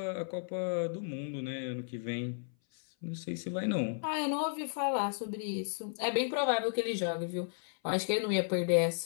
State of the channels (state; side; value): silent; right; 55 dB below the other